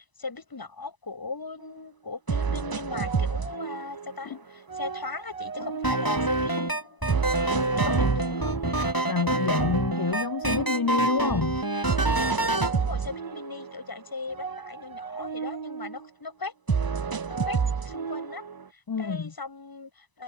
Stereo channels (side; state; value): right; late; 1.0 ms